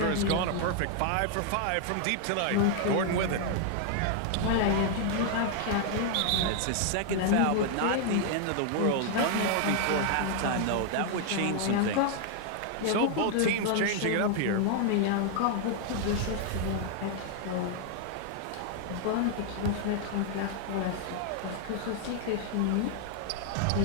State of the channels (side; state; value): both; different; correlation 0.00